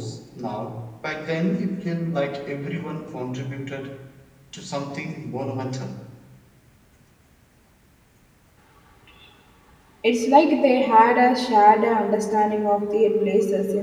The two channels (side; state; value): both; identical; correlation 1.00